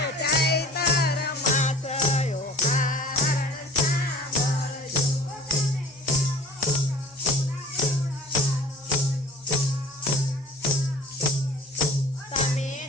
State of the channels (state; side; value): normal; both; correlation 0.45